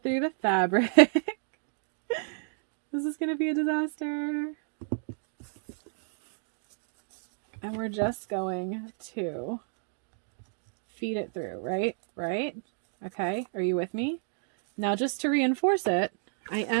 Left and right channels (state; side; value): silent; left; digital silence